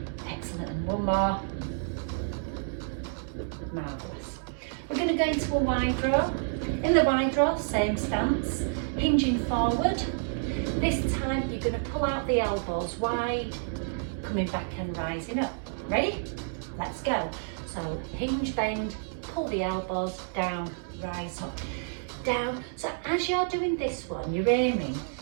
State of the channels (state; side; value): silent; left; 58 dB below the other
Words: Excellent, and 1 more. Marvellous. We're going to go into a wide row. In the wide row, same stance, hinging forward. This time you're going to pull out the elbows wide, coming back and rising up. Ready? Let's go. So hinge, bend, pull the elbows down, rise up, down. So as you're doing this one, you're aiming